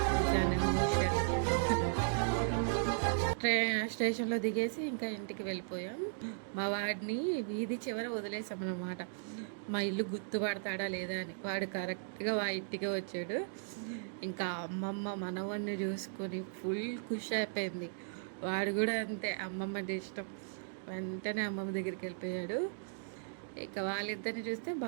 జనమోషన్. స్టేషన్లో దిగేసి ఇంకా ఇంటికి వెళ్ళిపోయాం. మా వాడిని వీధి చివర వదిలేసామన్నమాట. మా ఇల్లు గుర్తుపడతాడా లేదా అని. వాడు కరెక్ట్గా మా ఇంటికే వచ్చాడు. ఇంకా అమ్మమ్మ మనవన్ని చూసుకొని ఫుల్ ఖుషి అయిపోయింది. వాడు కూడా అంతే, అమ్మమ్మ అంటే ఇష్టం. వెంటనే అమ్మమ్మ దగ్గరికి వెళ్ళిపోయాడు. ఇక వాళ్ళిద్దరిని చూస్తే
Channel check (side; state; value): left; silent; digital silence